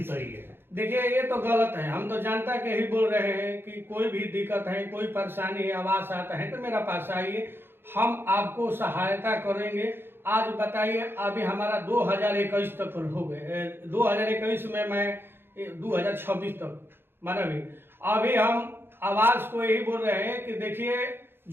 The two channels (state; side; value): late; left; 0.10 ms